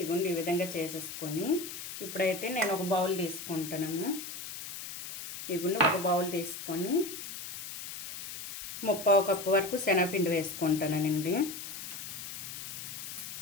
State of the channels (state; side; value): noise; left; hiss, 9 dB below the sound